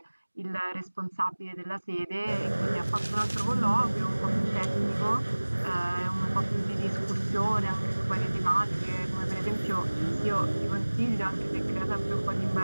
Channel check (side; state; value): both; inverted; correlation -1.00